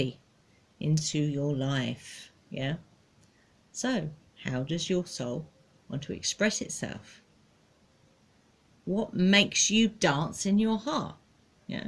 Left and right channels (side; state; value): both; identical; correlation 1.00